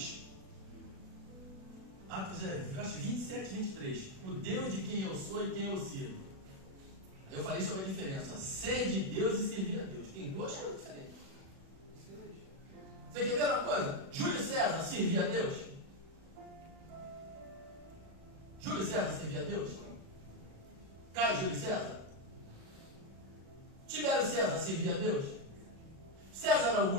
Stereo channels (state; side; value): late; left; 37 ms